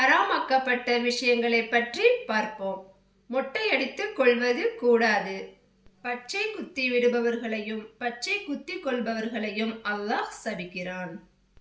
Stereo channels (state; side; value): identical; both; correlation 1.00